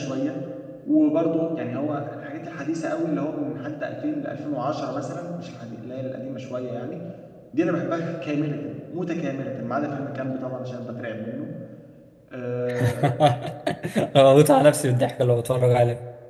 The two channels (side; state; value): both; identical; correlation 1.00